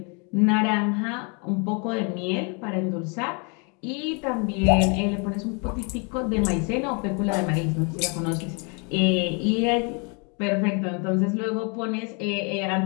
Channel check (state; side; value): quieter; right; 34.6 dB